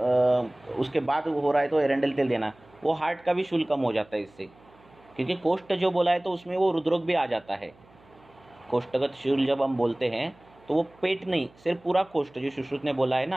उसके बाद हो रहा है तो एरेंडल तेल देना, वो हार्ट का भी शूल कम हो जाता है इससे. क्योंकि कोष्ठ जो बोला है तो उसमें वो हृदरोग भी आ जाता है. कोष्ठगत शूल जब हम बोलते हैं तो वो पेट नहीं, सिर्फ पूरा कोष्ठ, जो सुश्रुत ने बोला है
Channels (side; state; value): right; noise; hum, 28 dB below the sound